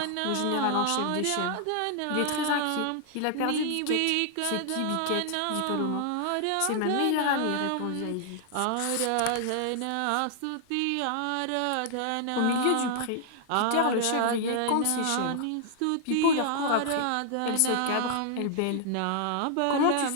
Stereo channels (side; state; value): both; different; correlation -0.01